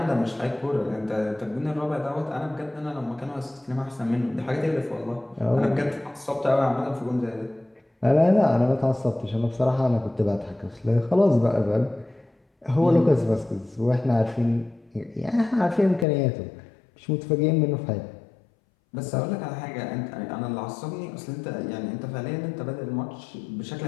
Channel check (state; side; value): drops out; right; at 16.1 s